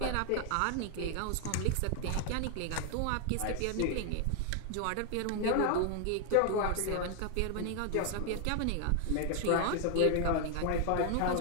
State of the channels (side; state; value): both; different; correlation 0.00